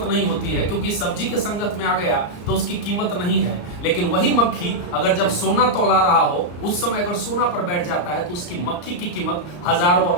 नहीं होती है, क्योंकि सब्जी के संगत में आ गया तो उसकी कीमत नहीं है। लेकिन वही मक्खी अगर जब सोना तौला रहा हो, उस समय अगर सोना पर बैठ जाता है तो उसकी मक्खी की कीमत हजारों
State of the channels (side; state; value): right; late; 34 ms